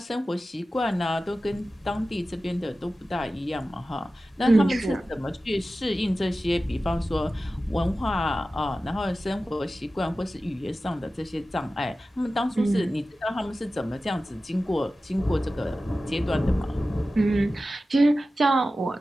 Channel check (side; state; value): both; normal; correlation 0.95